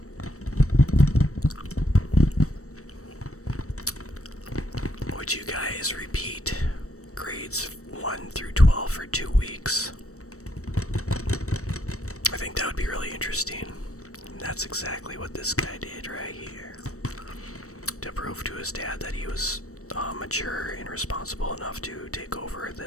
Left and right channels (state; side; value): late; right; 0.65 ms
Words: Would you guys repeat grades 1 through 12 for 2 weeks? I think that would be really interesting. And that's exactly what this guy did right here. To prove to his dad that he was mature and responsible enough to take over